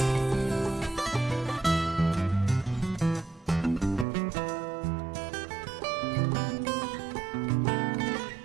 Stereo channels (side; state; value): left; drops out; at 4.0 s